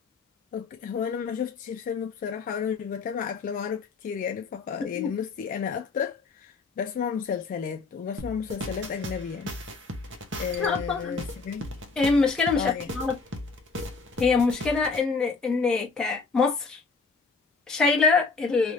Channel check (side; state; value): right; quieter; 4.5 dB